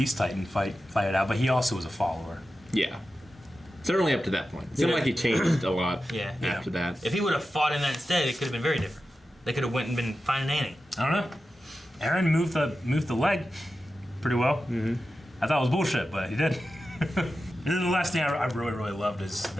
Titan fight it out, but he also was a follower. Yeah. Certainly up to that point. It seemed like he changed a lot Yeah. after that. If he would have fought in that instead, it could have been very different. They could have went and been finding Annie. I don't know. Aaron moved the leg pretty well. Mm-hmm. I thought it was bullshit, but he did. And then the last thing I really, really loved is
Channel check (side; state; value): both; normal; correlation 0.92